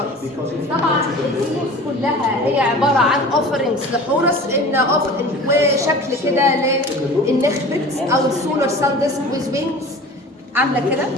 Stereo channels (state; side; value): normal; both; correlation 0.39